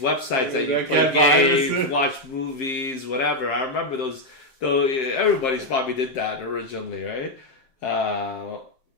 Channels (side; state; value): right; late; 7.6 ms